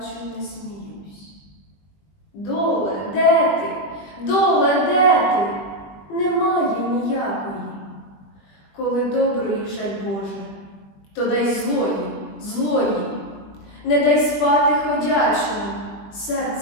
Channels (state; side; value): late; right; 21 ms